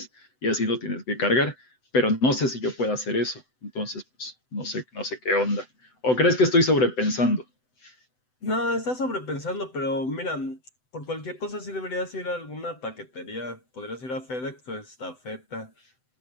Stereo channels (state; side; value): late; right; 7.9 ms